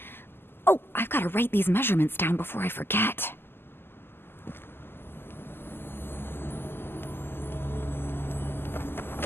Oh, I've got to write these measurements down before I forget.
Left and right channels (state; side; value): late; right; 0.11 ms